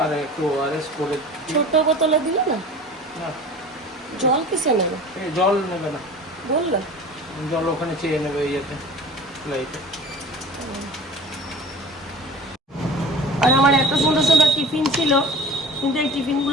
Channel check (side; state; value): both; normal; correlation 0.39